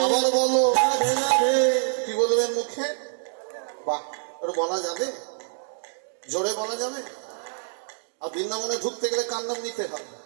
আবার বলো, কি বলবেন মুখে? বাহ, ওটা বলা যাবে, জোরে বলা যাবে। আর বৃন্দাবনে ঢুকতে গেলে কার নাম নিতে হবে?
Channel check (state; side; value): silent; left; 61 dB below the other